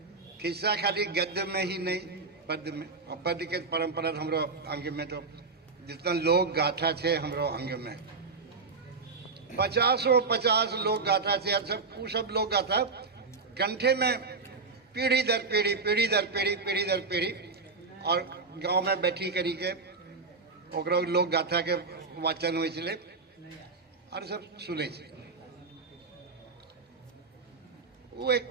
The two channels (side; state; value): left; quieter; 4.3 dB